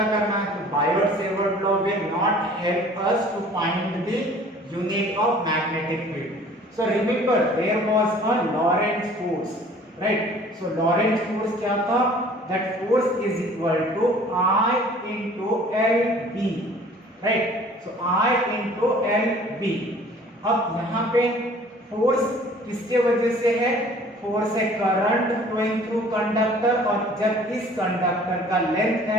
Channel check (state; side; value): normal; both; correlation 0.51